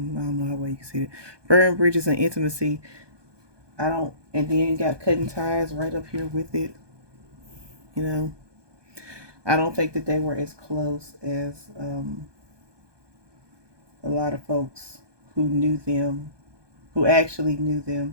know how well you can see it. Burned bridges and intimacy. I don't, and then you got cutting ties right up here with it. You know, I don't think that they were as close as a lot of folks who knew them, who actually knew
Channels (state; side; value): late; left; 1.2 ms